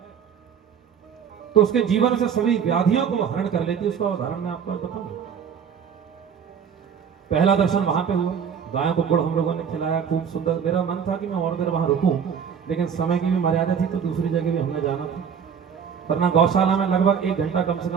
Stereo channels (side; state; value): left; quieter; 7.3 dB